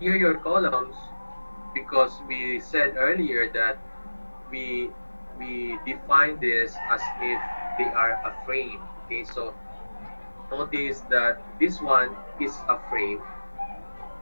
columns, because we said earlier that we we define this as if they are a frame. Okay, so notice that this one is a frame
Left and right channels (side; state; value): both; inverted; correlation -1.00